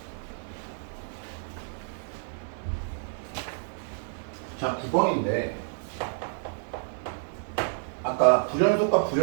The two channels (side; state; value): left; silent; digital silence